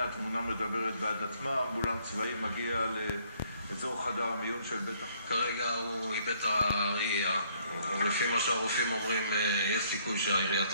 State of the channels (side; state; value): both; inverted; correlation -0.64